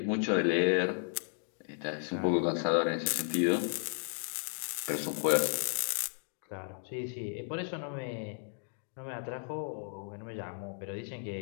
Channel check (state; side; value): silent; right; 55 dB below the other